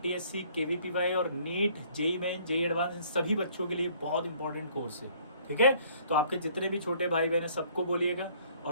KVPY और NEET, JEE main, JEE advance, इन सभी बच्चों के लिए बहुत इंपॉर्टेंट कोर्स है, ठीक है। तो आपके जितने भी छोटे भाई बहन हैं सबको बोलिएगा।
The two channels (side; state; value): both; inverted; correlation -0.59